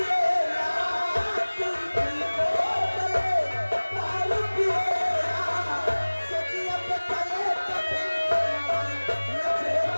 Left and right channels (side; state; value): both; inverted; correlation -1.00